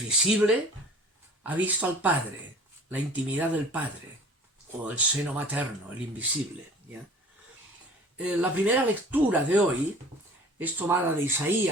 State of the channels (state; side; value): normal; both; correlation 0.46